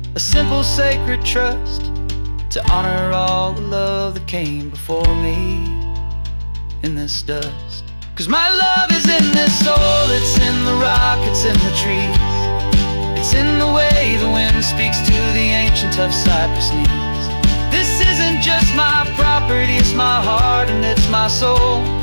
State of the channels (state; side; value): inverted; both; correlation -1.00